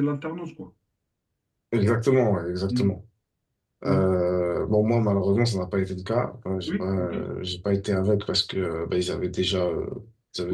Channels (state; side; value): identical; both; correlation 1.00